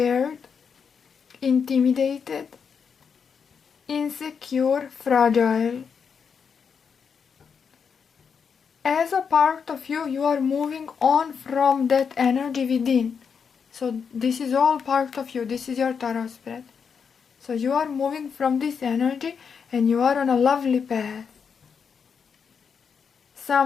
intimidated, insecure, fragile. As a part of you, you are moving on from that energy within. So this is all part of you. This is your tarot spread. So you are moving from this energy and you are on a lovely path.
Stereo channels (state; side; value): quieter; right; 6.4 dB